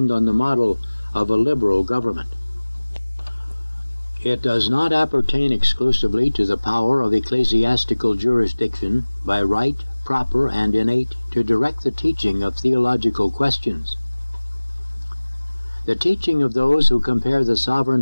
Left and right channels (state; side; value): inverted; both; correlation -1.00